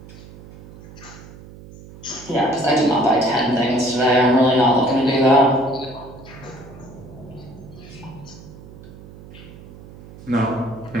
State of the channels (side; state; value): right; noise; hum, 18 dB below the sound